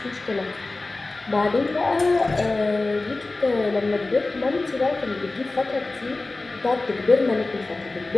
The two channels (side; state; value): right; quieter; 3.2 dB